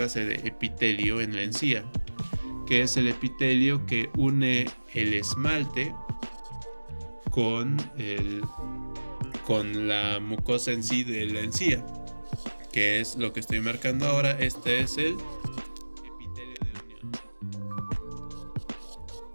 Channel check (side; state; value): both; inverted; correlation -1.00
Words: de epitelio en la encía, que es el epitelio que une el esmalte con la mucosa en sí de la encía, que es lo que estoy marcando ahora. Este es el epitelio de unión.